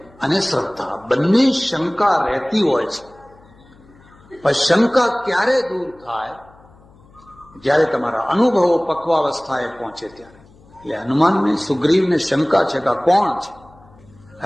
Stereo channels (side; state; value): left; noise; hum, 27 dB below the sound